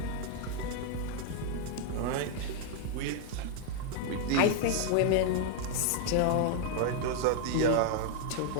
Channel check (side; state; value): both; different; correlation 0.00